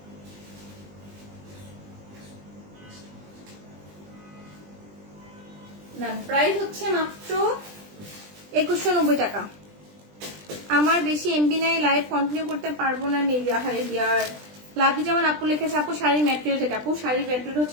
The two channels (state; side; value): late; left; 20 ms